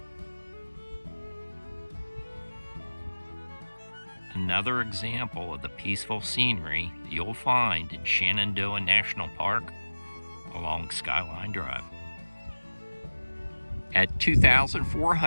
Another example of the peaceful scenery you'll find in Shenandoah National Park along Skyline Drive. At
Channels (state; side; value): inverted; both; correlation -1.00